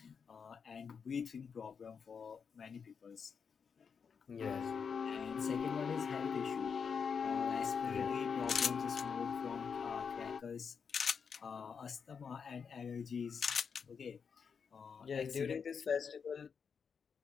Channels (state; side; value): quieter; right; 6.3 dB